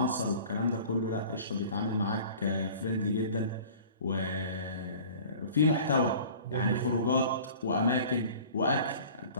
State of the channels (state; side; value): inverted; both; correlation -0.45